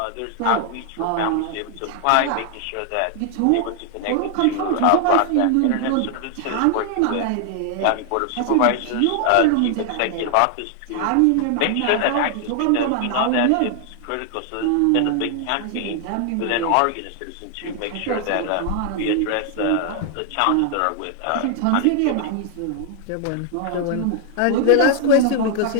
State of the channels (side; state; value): both; different; correlation 0.00